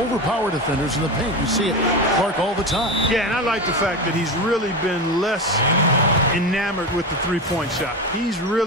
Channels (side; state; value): both; normal; correlation 0.21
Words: overpower defenders in the paint. You see it, Clark, all the time. Yeah, and I like the fact that he's really been less enamored with the three-point shot. He's